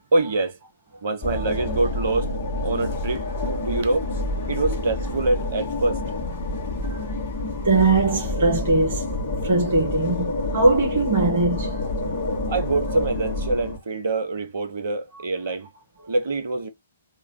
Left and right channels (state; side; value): inverted; both; correlation -0.58